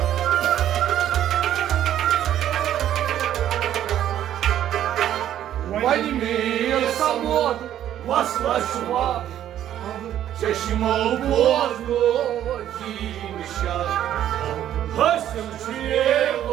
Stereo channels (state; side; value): quieter; left; 11.4 dB